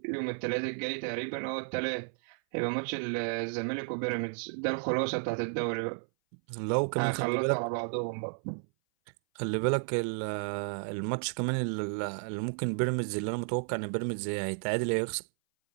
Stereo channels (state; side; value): silent; left; 56 dB below the other